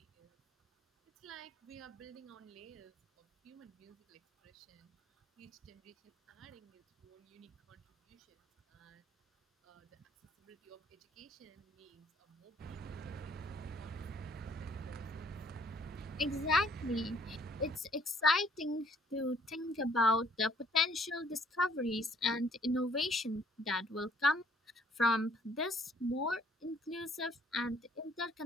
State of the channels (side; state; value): both; normal; correlation 0.61